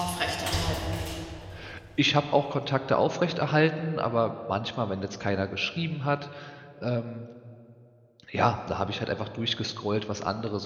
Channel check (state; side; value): identical; both; correlation 1.00